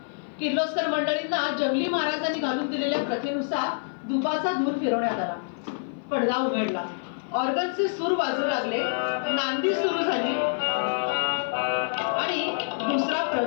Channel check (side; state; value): right; silent; 56 dB below the other